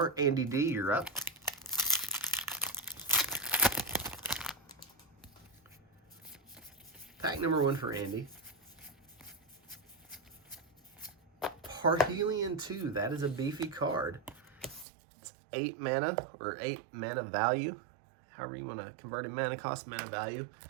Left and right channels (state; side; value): drops out; left; at 14.9 s